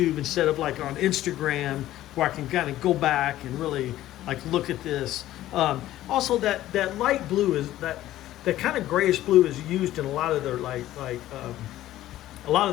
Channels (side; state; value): right; quieter; 14.3 dB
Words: instead of like on Instagram, where I can kind of go back and really like look at this. Also, that light blue is that kind of grayish blue is used in a lot of their a lot